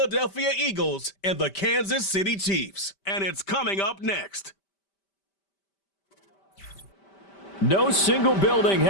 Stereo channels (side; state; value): right; late; 5.1 ms